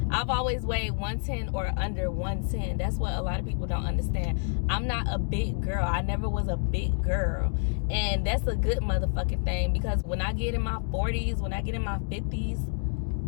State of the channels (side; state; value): right; silent; 58 dB below the other